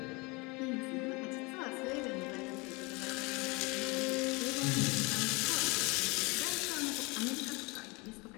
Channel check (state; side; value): quieter; right; 27.0 dB